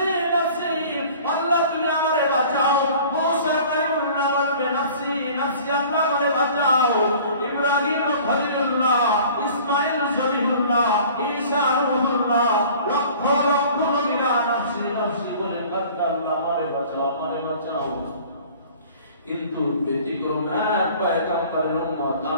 নাফসি, আল্লাহ তুমি আমারে বাঁচাও। মুসা কালিমুল্লাহ বললেন নাফসি নাফসি, আল্লাহ আমারে বাঁচাও। ইব্রাহিম খলিলুল্লাহ, ইসমাঈল জবিহুল্লাহ, ঈসা রূহুল্লাহ, লক্ষ লক্ষ নবীরা নাফসি নাফসি বলে কাঁদলেন, আল্লাহ আমারে বাঁচাও আমারে বাঁচাও। কিন্তু ব্যতিক্রম এক পয়গম্বরের উম্মত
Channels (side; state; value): both; inverted; correlation -0.47